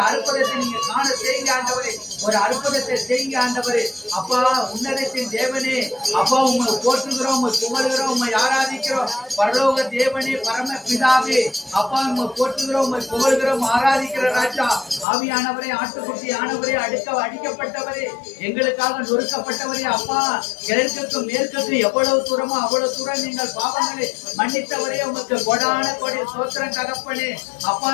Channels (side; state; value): right; drops out; at 15.1 s